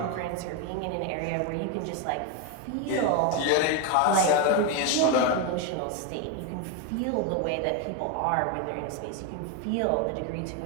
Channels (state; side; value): different; both; correlation 0.02